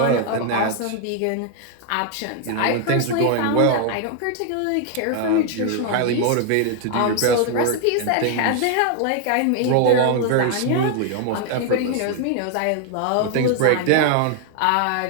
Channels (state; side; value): different; both; correlation 0.00